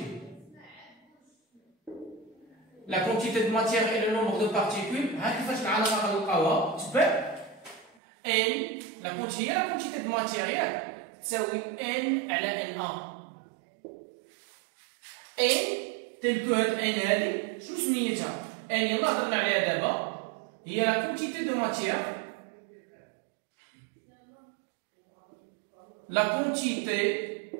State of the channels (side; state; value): left; drops out; at 7.9 s